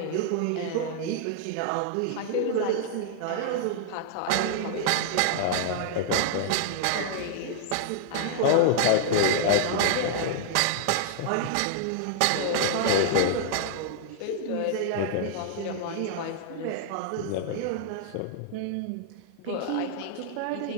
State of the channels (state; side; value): different; both; correlation -0.01